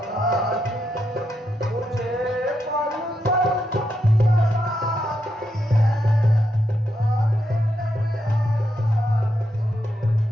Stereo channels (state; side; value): normal; both; correlation 0.82